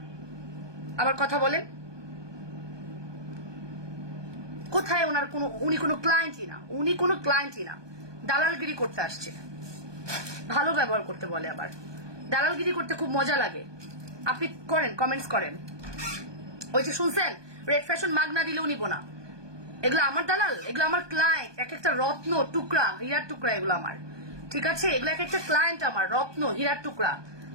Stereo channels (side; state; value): left; late; 1.2 ms